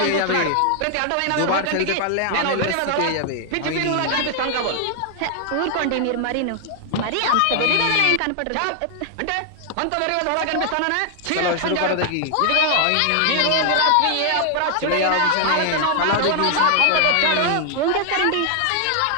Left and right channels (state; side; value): different; both; correlation 0.00